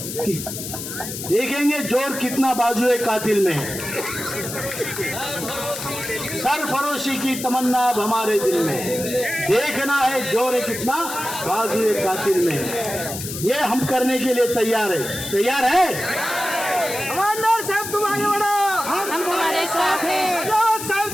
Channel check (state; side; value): noise; left; hiss, 8 dB below the sound